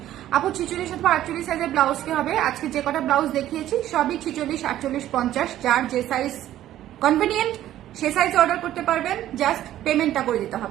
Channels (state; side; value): quieter; left; 12.9 dB